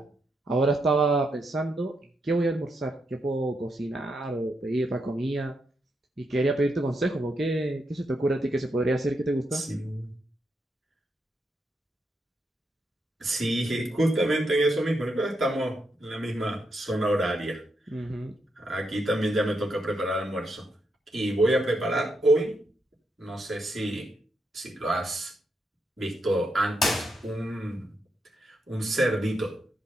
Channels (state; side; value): normal; both; correlation 0.82